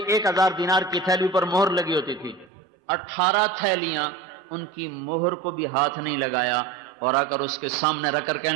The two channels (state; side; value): drops out; left; at 2.5 s